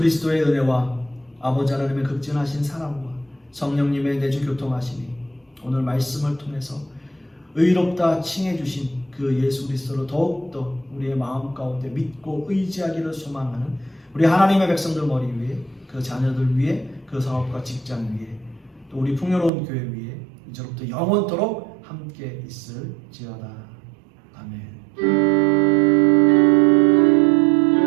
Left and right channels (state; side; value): drops out; left; at 19.5 s